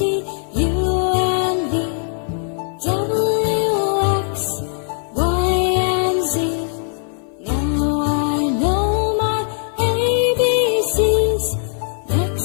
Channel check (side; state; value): right; silent; 56 dB below the other